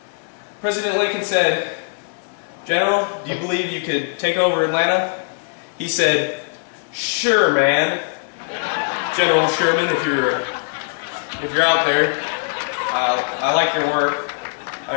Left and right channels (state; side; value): silent; right; 59 dB below the other